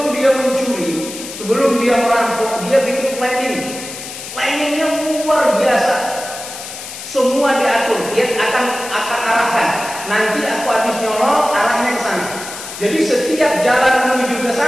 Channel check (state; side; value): noise; left; hiss, 11 dB below the sound